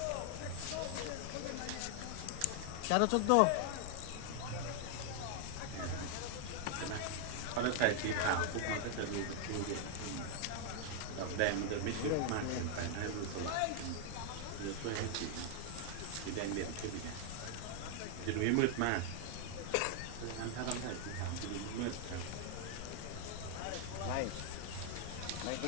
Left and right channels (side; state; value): both; different; correlation 0.00